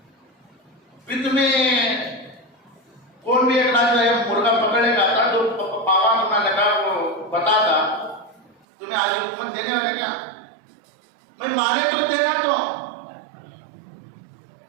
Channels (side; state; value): left; drops out; at 8.6 s